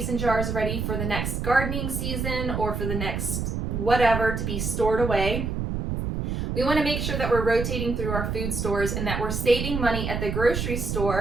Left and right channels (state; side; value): noise; right; rumble, 2 dB below the sound